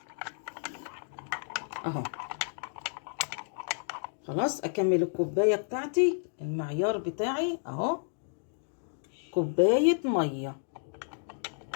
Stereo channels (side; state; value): right; silent; digital silence